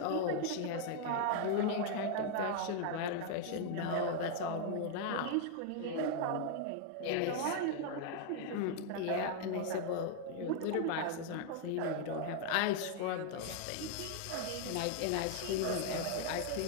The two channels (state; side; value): different; both; correlation 0.00